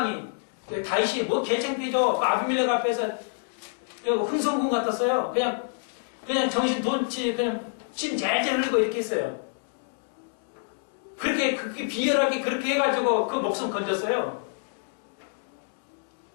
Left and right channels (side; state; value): right; silent; digital silence